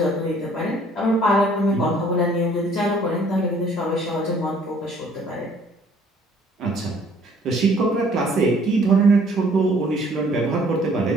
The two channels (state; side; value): normal; both; correlation 0.58